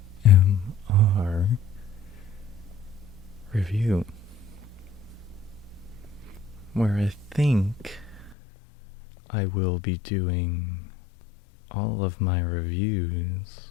Review, where I think I will be doing all of my reviews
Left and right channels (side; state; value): right; drops out; at 8.3 s